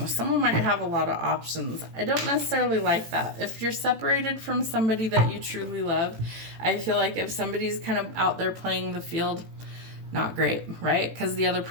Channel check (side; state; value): left; late; 18 ms